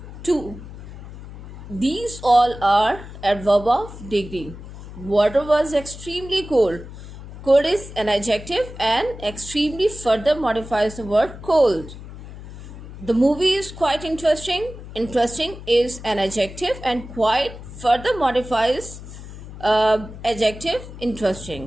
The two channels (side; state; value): left; noise; hum, 14 dB below the sound